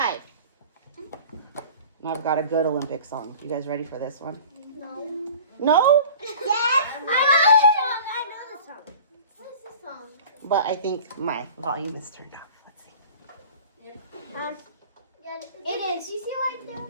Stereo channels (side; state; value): both; inverted; correlation -0.43